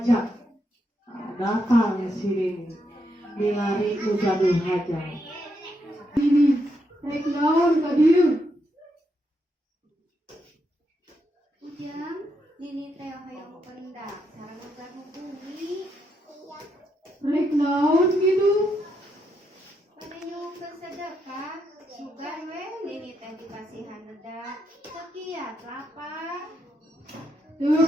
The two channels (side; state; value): both; normal; correlation 0.80